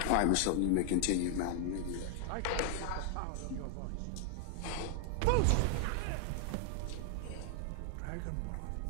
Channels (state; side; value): different; both; correlation 0.00